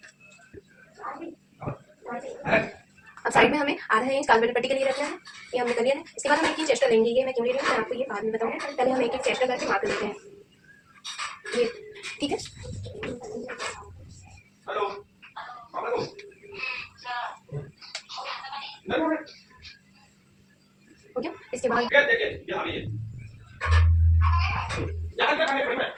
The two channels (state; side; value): identical; both; correlation 1.00